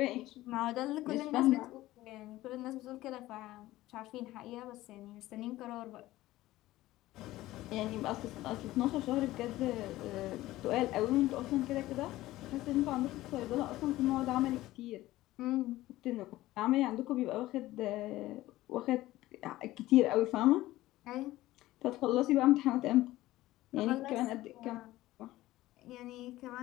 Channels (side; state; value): right; quieter; 16.6 dB